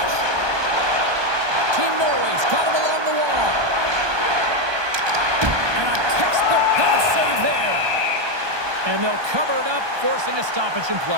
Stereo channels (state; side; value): late; left; 1.2 ms